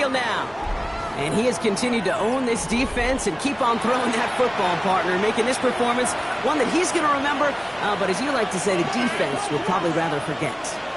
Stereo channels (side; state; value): both; identical; correlation 1.00